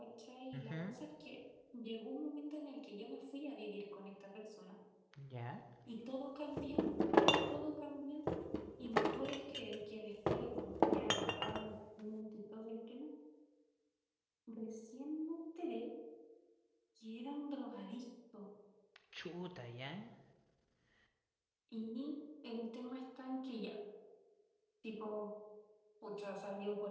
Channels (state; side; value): identical; both; correlation 1.00